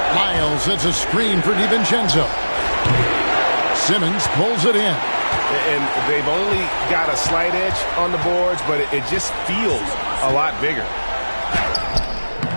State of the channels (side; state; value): both; inverted; correlation -1.00